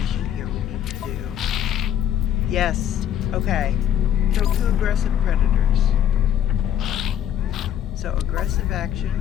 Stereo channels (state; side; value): quieter; right; 10.2 dB